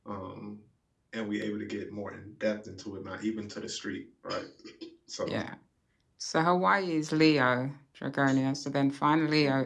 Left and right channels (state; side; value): identical; both; correlation 1.00